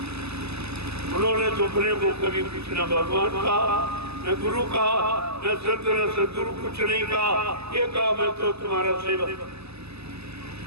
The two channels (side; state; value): left; late; 0.79 ms